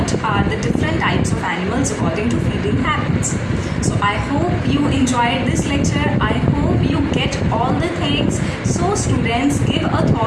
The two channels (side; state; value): both; identical; correlation 1.00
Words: are the different types of animals according to feeding habits. So I hope you enjoyed this lecture. I hope you get all the things. So students, give a